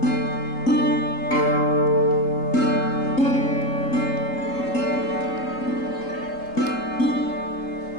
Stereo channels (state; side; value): late; right; 3.8 ms